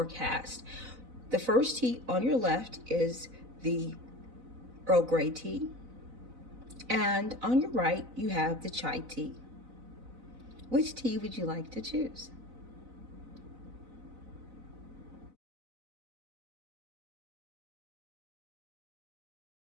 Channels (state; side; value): late; left; 4.0 ms